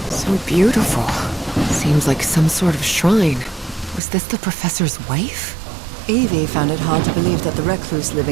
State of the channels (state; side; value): drops out; left; at 4.0 s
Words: so beautiful. Seems like some sort of shrine. Was this the professor's wife? Evie found it hard to believe that the recluse